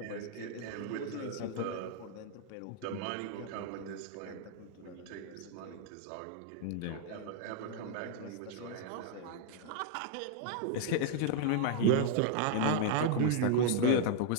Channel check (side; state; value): both; different; correlation 0.00